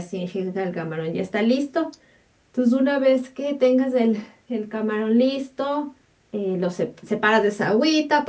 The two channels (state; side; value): identical; both; correlation 1.00